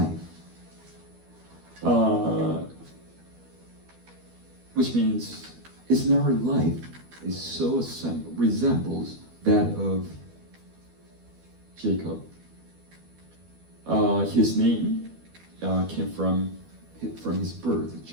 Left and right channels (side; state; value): left; late; 12 ms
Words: Which means it's in our life is so resembles that of Jacob. His name came from his birth,